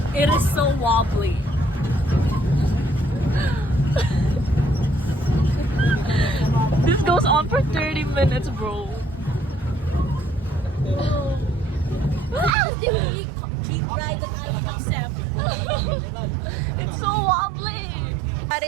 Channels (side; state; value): left; drops out; at 12.5 s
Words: It is so wobbly. This goes on for 30 minutes, bro. This is the only cheap ride that I would accept. It's so wobbly.